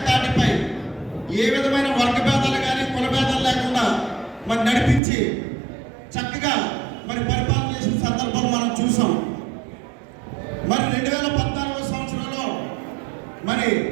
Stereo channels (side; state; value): left; drops out; at 5.0 s